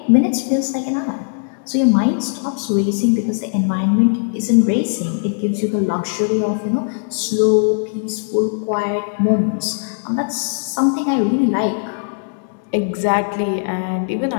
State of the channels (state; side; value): silent; right; digital silence